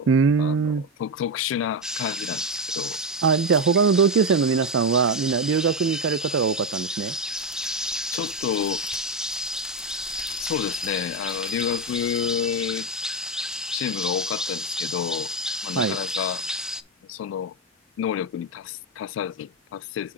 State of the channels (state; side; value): normal; both; correlation 0.11